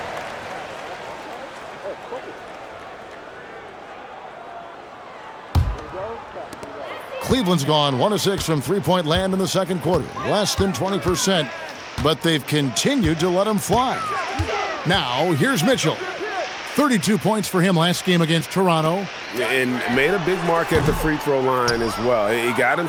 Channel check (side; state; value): both; identical; correlation 1.00